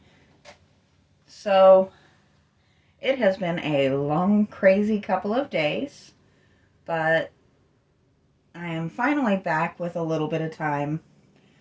So, it has been a long, crazy couple of days, but I am finally back with a little bit of time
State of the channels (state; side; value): identical; both; correlation 1.00